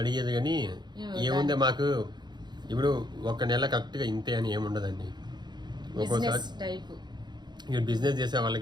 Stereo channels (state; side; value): late; left; 0.21 ms